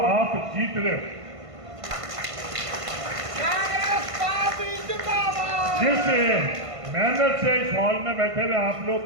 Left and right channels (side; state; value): left; late; 1.5 ms